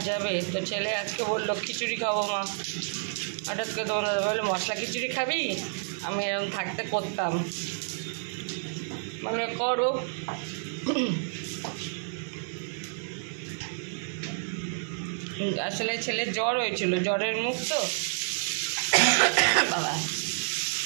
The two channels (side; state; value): left; silent; digital silence